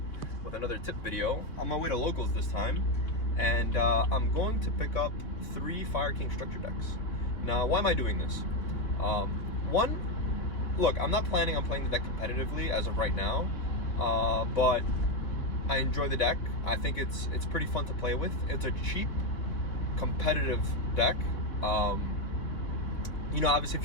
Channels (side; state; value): right; late; 3.4 ms